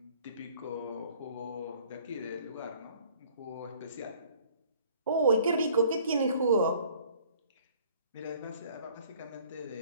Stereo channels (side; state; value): both; inverted; correlation -0.55